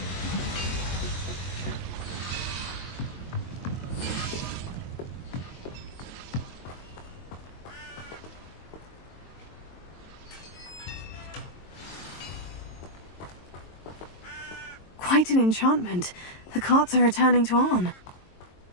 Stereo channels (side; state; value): right; late; 22 ms